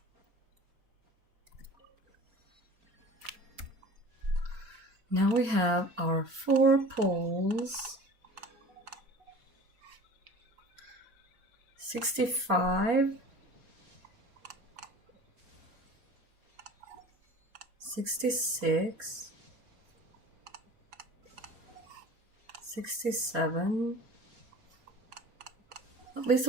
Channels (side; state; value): left; late; 4.3 ms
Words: now we have our 4 poles. 65. 66. 67. At least